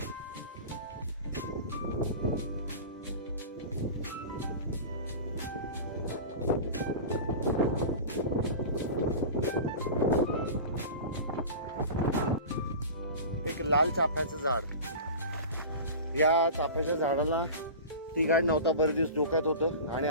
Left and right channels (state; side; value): inverted; both; correlation -0.33